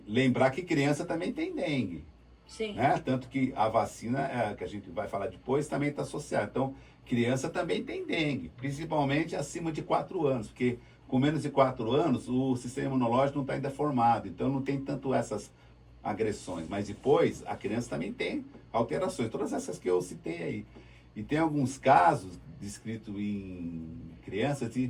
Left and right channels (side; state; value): both; identical; correlation 1.00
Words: lembrar que criança também tem dengue. Sim. Né? Tanto que a vacina, que a gente vai falar depois, também está associada. Então, criança também tem dengue, principalmente acima de 4 anos, porque com menos de 4 anos o sistema imunológico não está ainda formado, então não tem tanto essas agressões. Mas depois, a criança também tem alterações, todas essas que eu citei aí. E tem alguns casos descritos em crianças